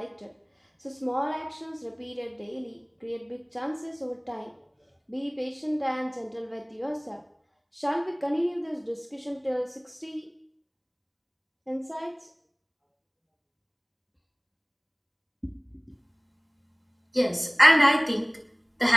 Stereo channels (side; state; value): both; identical; correlation 1.00